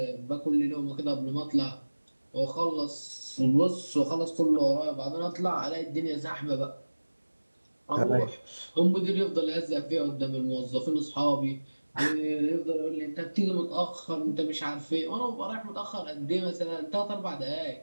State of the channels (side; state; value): both; inverted; correlation -1.00